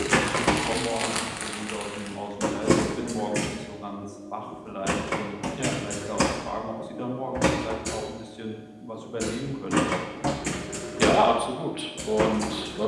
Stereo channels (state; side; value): identical; both; correlation 1.00